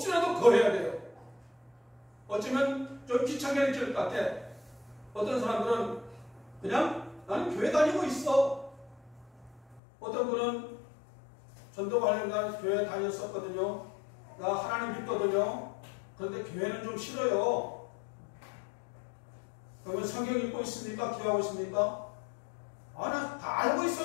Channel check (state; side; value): drops out; right; at 9.8 s